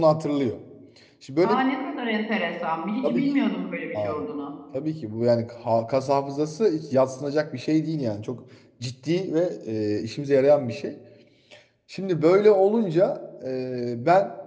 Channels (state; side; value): identical; both; correlation 1.00